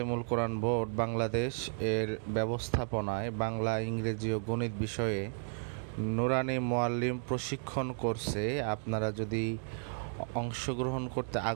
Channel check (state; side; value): silent; left; 55 dB below the other